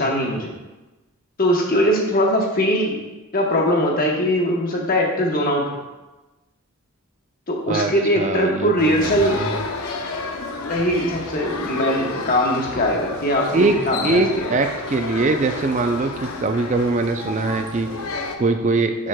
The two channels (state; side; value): normal; both; correlation 0.28